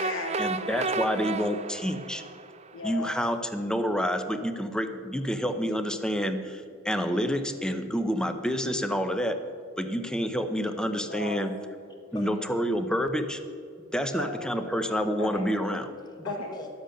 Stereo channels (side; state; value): both; normal; correlation 0.68